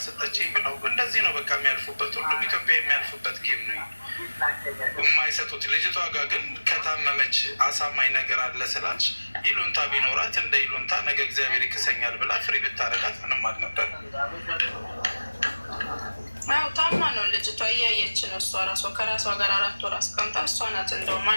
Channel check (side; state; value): both; inverted; correlation -1.00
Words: ብለው እንደዚህ ነው በቃ የሚያልፉበት። ሁሉም ኢትዮጵያ የሚያልፉበት ጌም ነው የማይሰጡት። ልጅቷ ጋር ግን ከታመመች አሳማኝ ነገር አለ ስላልሽ ይሉንታ ቢኖራት እንደ ይሉንታ ነገ እግዚአብሔር ይክሰኛል ብላ ፍሪ ብታረጋት ምንም አልነበር። ያው ታማ ነው ልጅቷ፣ እያየች ነው እሷ ራሷ ከራሷ ጋር 4 ወር አስቀምጣ እሷ ናት እንደውም